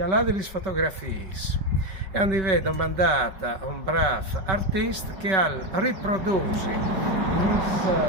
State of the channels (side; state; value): left; late; 5.3 ms